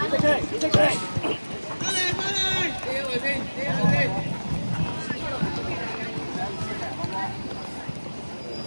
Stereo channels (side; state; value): both; inverted; correlation -1.00